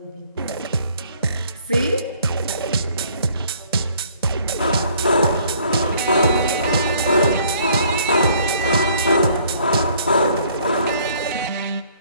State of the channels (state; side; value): inverted; both; correlation -0.60